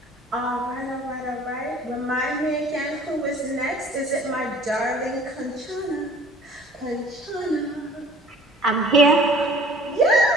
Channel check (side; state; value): both; normal; correlation 0.50